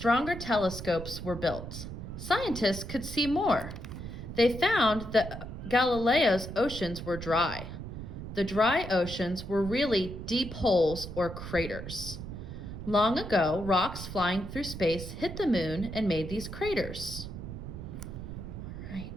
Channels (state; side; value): noise; right; rumble, 9 dB below the sound